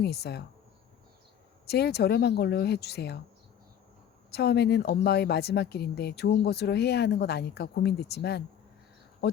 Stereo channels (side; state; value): right; quieter; 9.3 dB